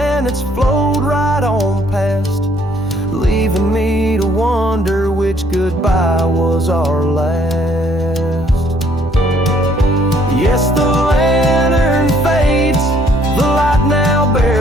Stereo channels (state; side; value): normal; both; correlation 0.64